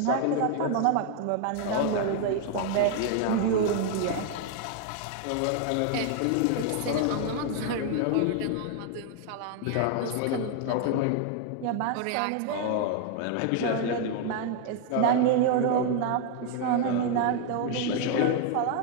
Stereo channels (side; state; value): both; different; correlation 0.00